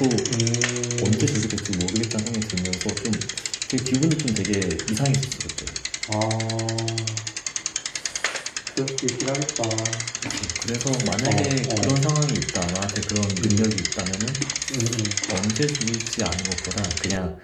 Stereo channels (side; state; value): both; identical; correlation 1.00